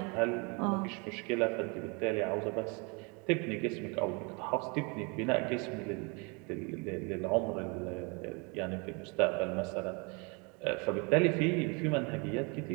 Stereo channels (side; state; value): left; quieter; 31.4 dB